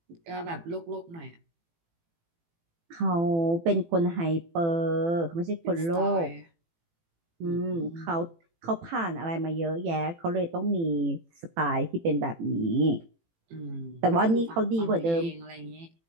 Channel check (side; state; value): left; late; 18 ms